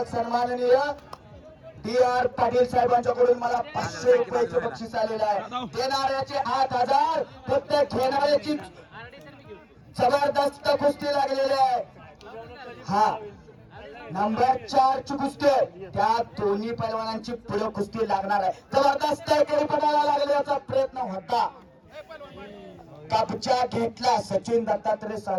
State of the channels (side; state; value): both; identical; correlation 1.00